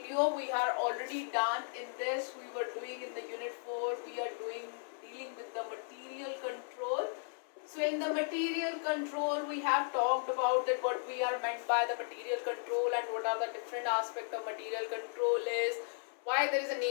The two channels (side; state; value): right; silent; 54 dB below the other